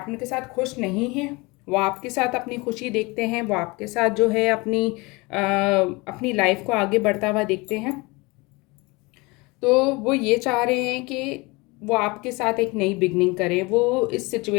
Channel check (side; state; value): right; quieter; 25.2 dB